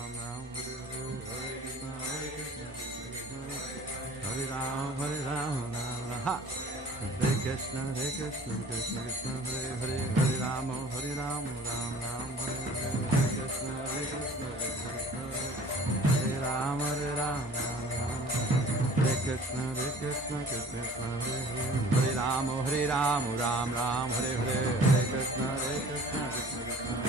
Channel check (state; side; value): normal; both; correlation 0.48